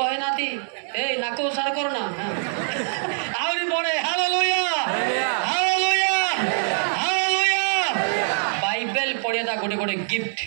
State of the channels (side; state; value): left; silent; digital silence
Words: ହେଇନାହାନ୍ତି। ଏଇ ନାକ ଉସାର କରନା। ଆହୁରି ବଢେ। Hallelujah hallelujah hallelujah. ବାଇବେଲ ପଢିବା ଗୋଟେ ଗିଫ୍ଟ,